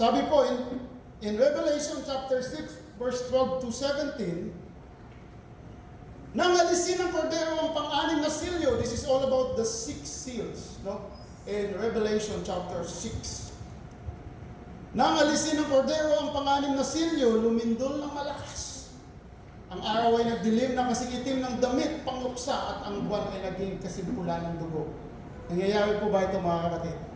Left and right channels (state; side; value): identical; both; correlation 1.00